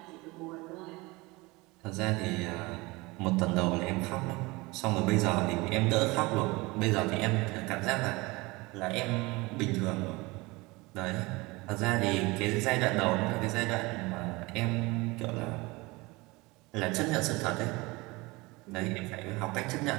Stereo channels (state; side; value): quieter; left; 23.4 dB